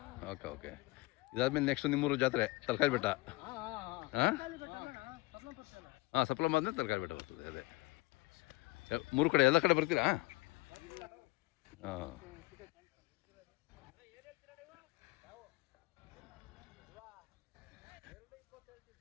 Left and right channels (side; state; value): right; quieter; 21.7 dB